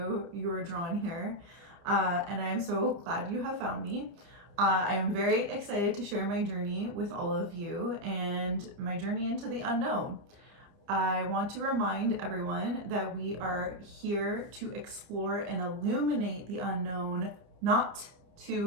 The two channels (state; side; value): late; left; 30 ms